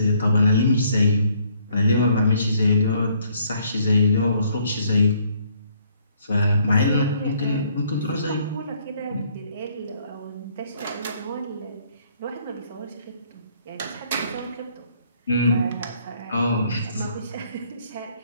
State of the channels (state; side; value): inverted; both; correlation -0.66